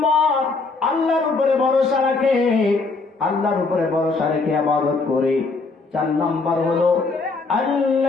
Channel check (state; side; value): quieter; right; 3.9 dB